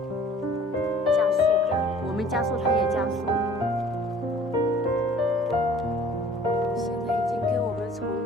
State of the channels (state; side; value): normal; both; correlation 0.51